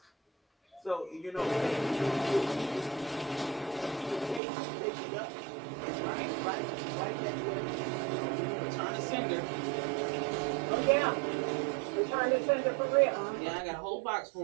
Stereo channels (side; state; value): left; drops out; at 4.4 s